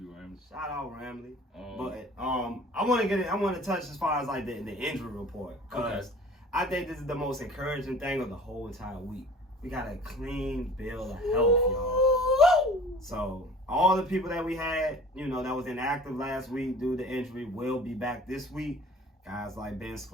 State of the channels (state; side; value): normal; both; correlation 0.45